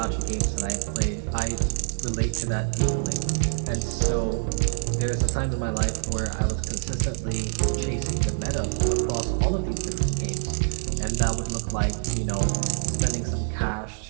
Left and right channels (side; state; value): left; silent; digital silence